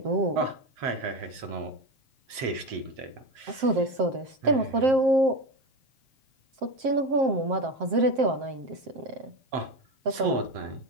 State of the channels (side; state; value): left; late; 7.9 ms